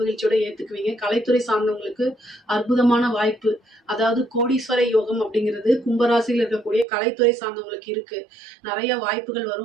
மகிழ்ச்சியோட ஏத்துக்குவீங்க. கலைத்துறை சார்ந்தவங்களுக்கு அற்புதமான வாய்ப்பு, அதாவது கோடீஸ்வர யோகம் அப்படிங்கிறது கும்பராசியில் இருக்கக்கூடிய கலைத்துறை சார்ந்தவங்களுக்கு இருக்கு. நிறைய வாய்ப்புகள்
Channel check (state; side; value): drops out; left; at 6.9 s